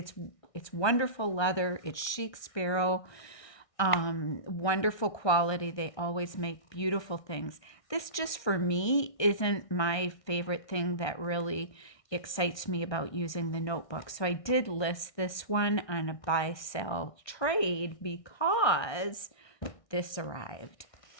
wonderful leather. It's Chic Sparrow. Wonderful quality. They always make beautiful things. This just for me isn't my favorite thing that really excites me about using the notebook. So I did list this one on a buy sell trade because this arrived.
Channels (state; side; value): late; right; 1.2 ms